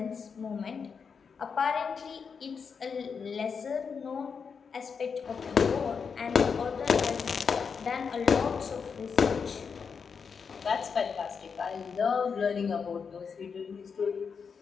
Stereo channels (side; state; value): right; quieter; 5.9 dB